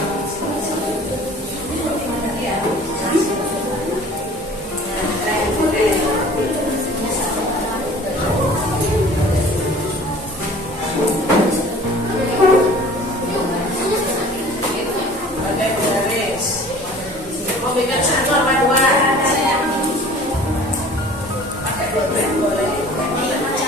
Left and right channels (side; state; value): both; normal; correlation 0.47